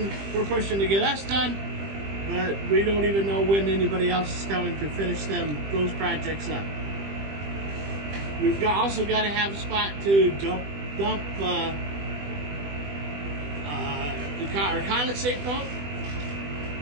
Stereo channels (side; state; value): left; late; 20 ms